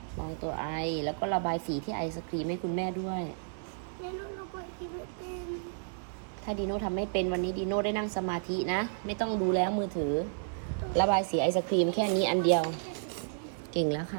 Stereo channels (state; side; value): silent; left; 55 dB below the other